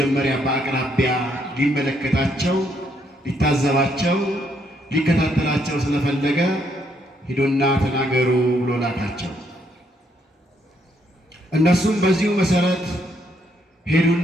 በአቅራቢያ ሊመለከታቸው፣ ሊታዘባቸው፣ ሊከታተላቸው ስለፈለገ ሂዱና ተናገሩ ብሎ ላካቸው። እነሱም በዚሁ መሰረት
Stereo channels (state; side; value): normal; both; correlation 0.73